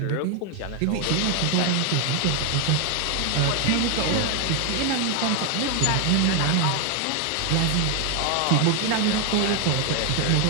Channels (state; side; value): different; both; correlation 0.01